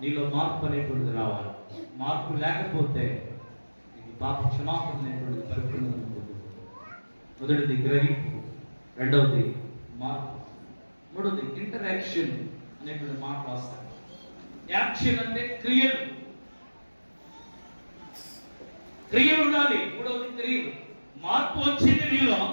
నీలో మార్పు అనేటువంటిది రావాలి. మార్పు లేకపోతే నీకు పాప క్షమాపణ అనేటువంటిది పరిపూర్ణంగా ఉంటుంది. మొదటిది గ్రహింపు, రెండవది మార్పు, మూడవది ఇంటరాక్షన్ అనేటువంటి మాట రాస్తాను. యాక్షన్ అంటే క్రియలు, క్రియలు ఉండాలి. మూడవది క్రియలు. మార్పు వచ్చింది నీలో,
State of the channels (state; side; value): inverted; both; correlation -1.00